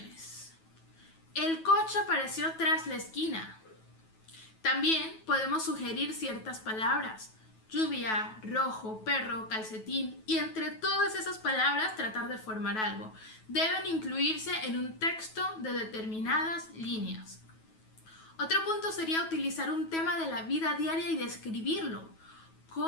El coche apareció tras la esquina. También podemos sugerir ciertas palabras. Lluvia, rojo, perro, calcetín. Y entre todas esas palabras tratar de formar algo. Deben incluirse en un texto de determinadas líneas. Otro punto sería utilizar un tema de la vida diaria y describirlo.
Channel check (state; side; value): late; right; 9.2 ms